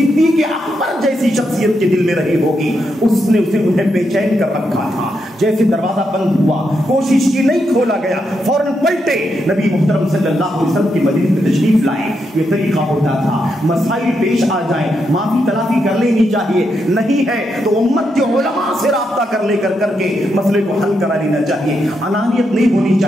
اکبر جیسی شخصیت کے دل میں رہی ہوگی، اس نے اسے انہیں بے چین کر رکھا تھا۔ جیسے دروازہ بند ہوا، کوشش کی نہیں کھولا گیا، فوراً پلٹے نبی محترم صلی اللہ علیہ وسلم کی مدینے میں تشریف لائے۔ یہ طریقہ ہوتا تھا، مسائل پیش آ جائیں معافی تلافی کر لینی چاہیے، نہیں ہے تو امت کے علماء سے رابطہ کر کے مسئلے کو حل کرا لینا چاہیے۔ انانیت نہیں ہونی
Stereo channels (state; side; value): normal; both; correlation 0.82